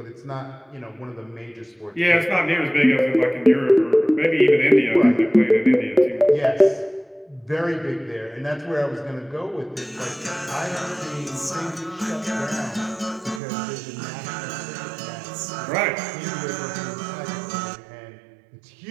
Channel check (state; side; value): drops out; left; at 13.4 s